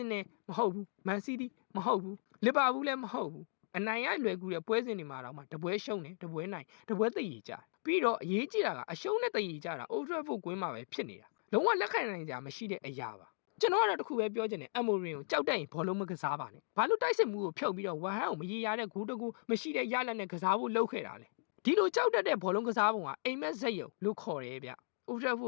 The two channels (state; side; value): silent; right; digital silence